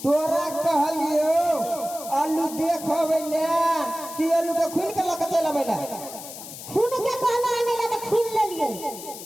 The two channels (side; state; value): left; noise; hiss, 12 dB below the sound